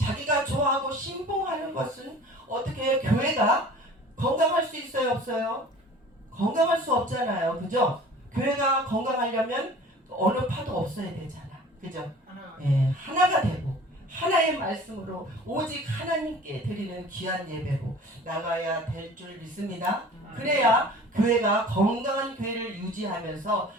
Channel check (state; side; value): normal; both; correlation 0.45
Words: 좋아하고 신봉하는 것은 어떻게 교회가 건강할 수 있어요, 없어요? 건강할 수 없잖아요, 그죠? 교회가 건강하려면 어느 파도 없어야 되잖아, 그죠? 하나가 되고 하나의 말씀으로 오직 하나님께 드리는 귀한 예배로 나가야 될 줄 믿습니다. 그래야 교회가 건강한 교회를 유지하면서